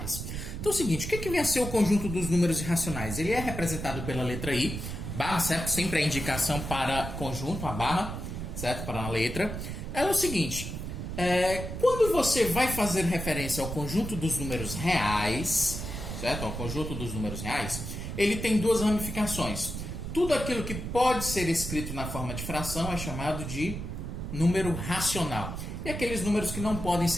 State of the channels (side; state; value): right; noise; rumble, 6 dB below the sound